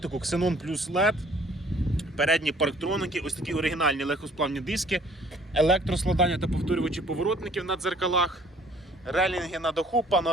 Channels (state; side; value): normal; both; correlation 0.57